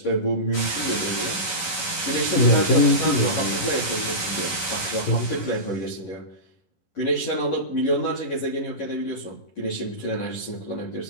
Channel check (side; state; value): right; late; 11 ms